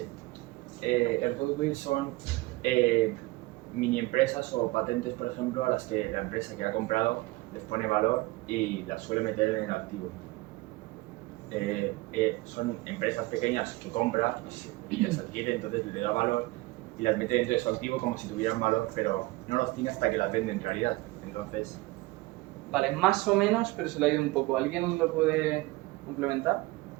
El goodwill son mini empresas o patentes, por ejemplo, a las que la empresa que ha comprado les pone valor y las suele meter en el activo. Son empresas pequeñas que compra y las adquiere, entonces le da valor y las mete dentro de su activo como si tuvieran valor, pero no los tiene hasta que las vende en realidad. Entonces, Vale, más o menos, pero se le ha ido un poco. ¿Alguien lo puede complementar?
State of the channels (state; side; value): quieter; left; 21.1 dB